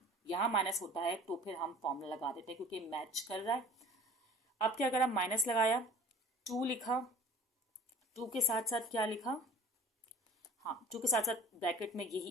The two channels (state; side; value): normal; both; correlation 0.44